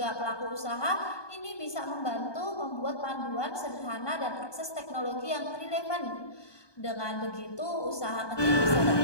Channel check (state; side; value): late; right; 1.2 ms